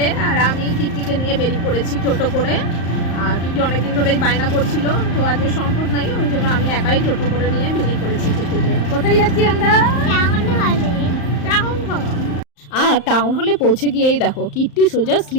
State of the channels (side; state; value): right; late; 35 ms